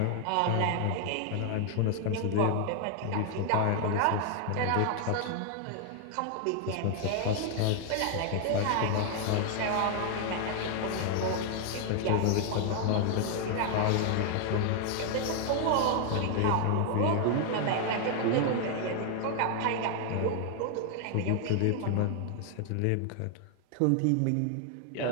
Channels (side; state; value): both; different; correlation 0.00